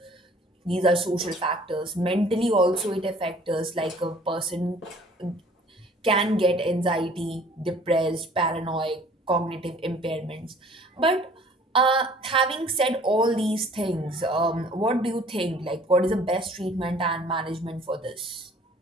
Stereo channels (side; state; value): both; normal; correlation 0.53